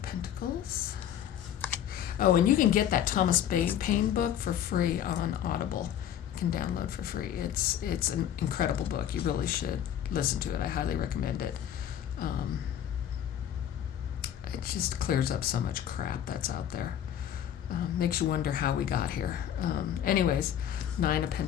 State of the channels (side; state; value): right; quieter; 10.2 dB